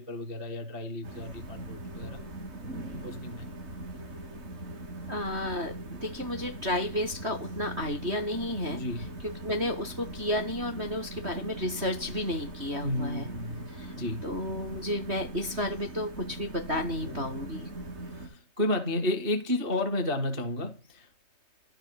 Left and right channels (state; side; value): late; left; 3.1 ms